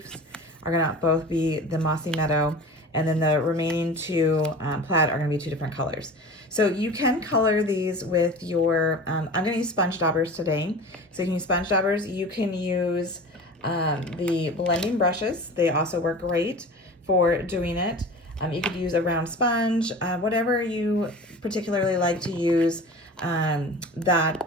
are going to both be the Mossy Meadow. And then the remaining 2 plaid are going to be 2 different colors. So you can color these with your, I'm going to use sponge daubers today. So you can use sponge daubers. You can use the blending brushes. They also work great for doing it. You could use a round sponge, whatever you particularly like to use,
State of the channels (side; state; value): both; normal; correlation 0.36